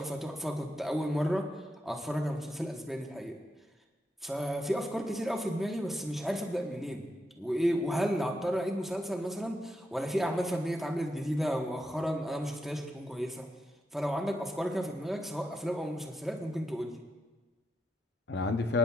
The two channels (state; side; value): normal; both; correlation 0.84